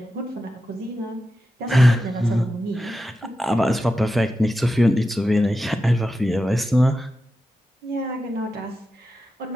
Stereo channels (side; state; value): both; normal; correlation 0.91